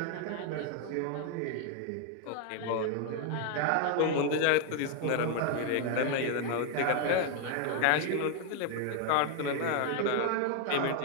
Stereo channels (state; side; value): different; both; correlation 0.01